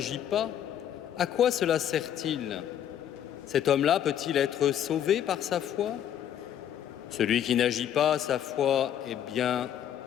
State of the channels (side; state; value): right; quieter; 10.1 dB